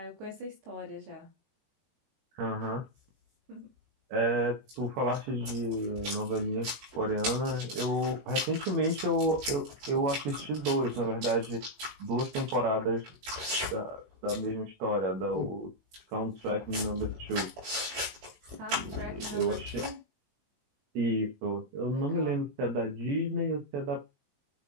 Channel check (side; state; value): left; late; 21 ms